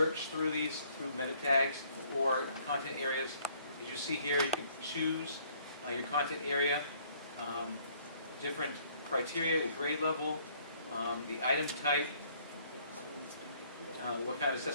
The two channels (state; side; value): inverted; both; correlation -0.62